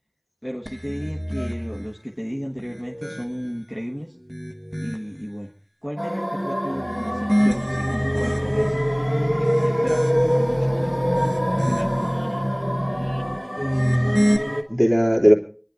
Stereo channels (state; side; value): identical; both; correlation 1.00